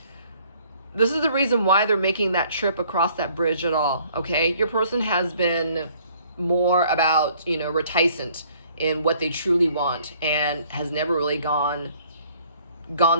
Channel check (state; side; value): inverted; both; correlation -0.59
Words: This is the reason why they're making that trip across that bridge at all, okay? Your person has been more about, reticent in what they truly want and has never really gone